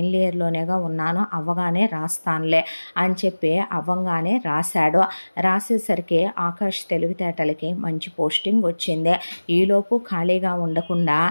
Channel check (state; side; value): inverted; both; correlation -1.00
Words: ఇయర్లోనేగా ఉన్నాను, అవ్వగానే రాస్తానులే అని చెప్పి అవ్వంగానే రాశాడు. రాసేసరికి ఆకాష్ తెలివితేటలకి మంచి పోస్టింగ్ వచ్చింది. ఈలోపు ఖాళీగా ఉండకుండా